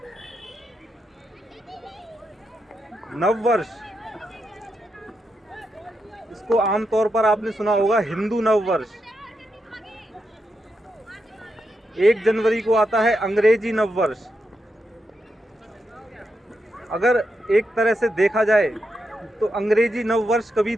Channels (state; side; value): normal; both; correlation 0.85